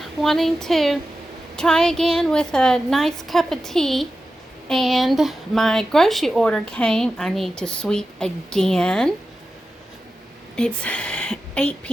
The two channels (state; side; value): normal; both; correlation 0.92